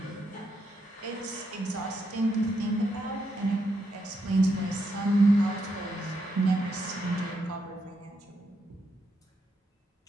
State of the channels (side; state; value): both; normal; correlation 0.80